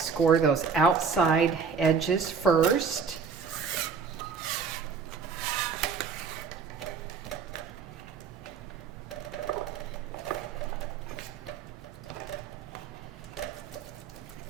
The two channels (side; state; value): left; quieter; 5.8 dB